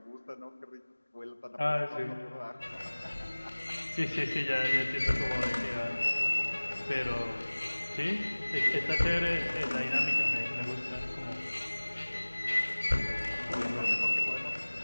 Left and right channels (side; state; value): both; inverted; correlation -1.00